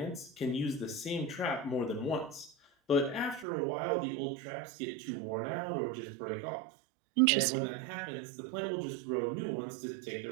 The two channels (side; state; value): left; drops out; at 3.5 s